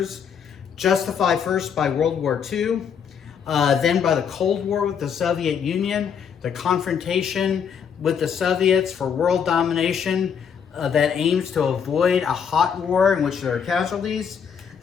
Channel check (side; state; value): right; quieter; 7.3 dB